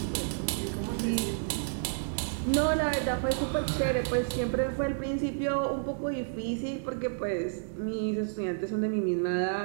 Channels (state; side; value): silent; left; digital silence